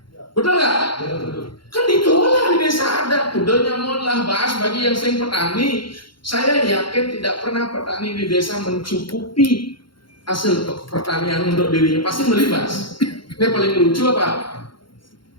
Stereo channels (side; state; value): right; late; 0.73 ms